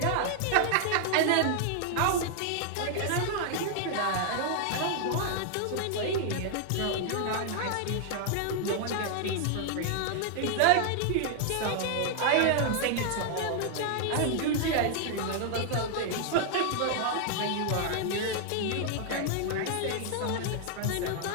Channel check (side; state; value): both; different; correlation 0.00